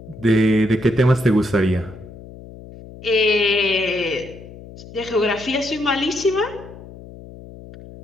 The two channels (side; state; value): left; noise; hum, 17 dB below the sound